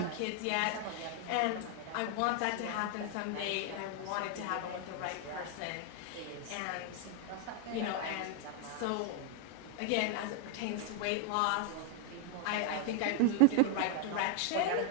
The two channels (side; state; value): both; different; correlation 0.00